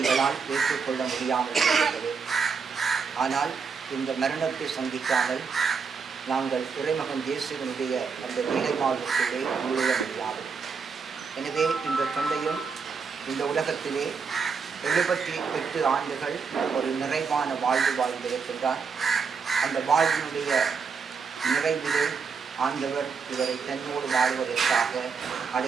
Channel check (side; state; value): left; quieter; 5.6 dB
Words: ஏற்றுக்கொள்ள முடியாமல் இருக்கிறது. ஆனால் இந்த மரணத்தை சந்திக்காமல் நாங்கள் இறைமகன் இயேசுவினுடைய அந்த நீலை வாழ்வுக்குள்ளே நுழைய முடியாது. எனவே இந்த தந்தையும் இந்த உலகத்திலே 78 ஆண்டுகள் ஒரு நிறைவான வாழ்வு வாழ்ந்திருக்கின்றார். அந்த வாழ்வினுடைய நிறைவிலே ஆண்டவர் இவரை தன்னோடு வாழ்வதற்காக